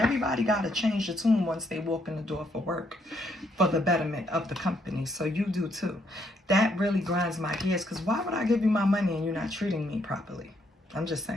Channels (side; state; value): both; normal; correlation 0.73